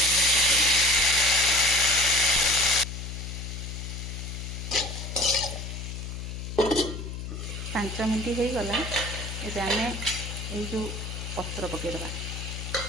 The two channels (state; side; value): noise; left; hum, 7 dB below the sound